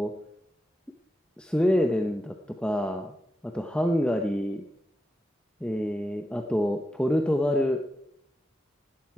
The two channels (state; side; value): normal; both; correlation 0.88